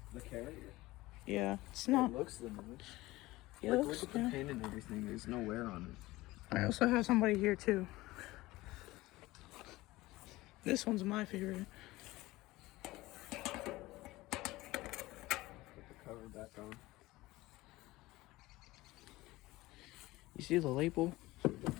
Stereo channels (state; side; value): quieter; right; 19.1 dB